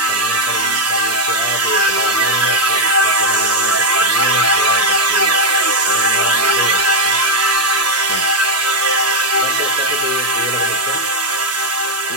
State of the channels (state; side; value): normal; both; correlation 0.02